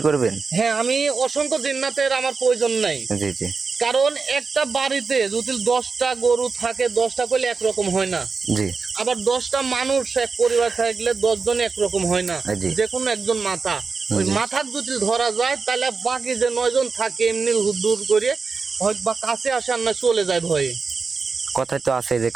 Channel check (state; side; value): quieter; left; 4.8 dB